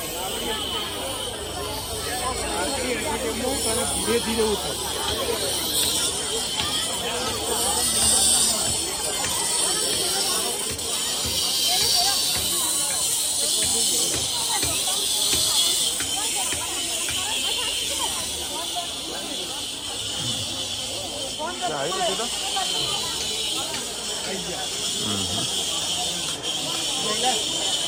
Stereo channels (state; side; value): identical; both; correlation 1.00